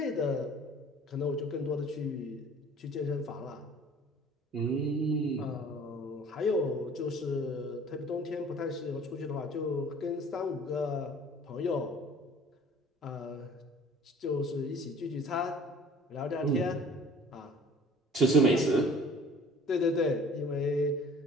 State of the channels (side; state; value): both; normal; correlation 0.49